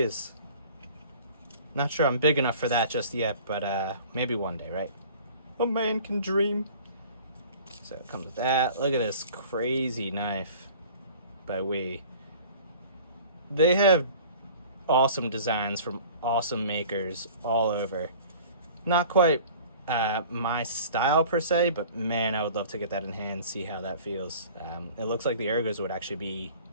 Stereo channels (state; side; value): inverted; both; correlation -0.46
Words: Not sure I'm big enough for that just yet, but maybe one day, right? A man can dream. So it comes with that. Look at this crazy knife by They have awesome designs from awesome makers all over. Not quite my style per se, but man, I would love to get that in hand, see how that feels. It looks like the ergos would actually be